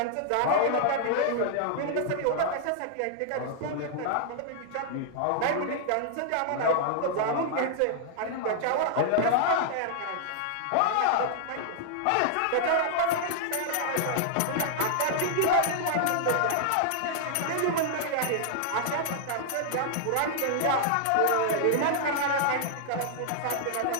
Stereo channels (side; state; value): both; different; correlation -0.01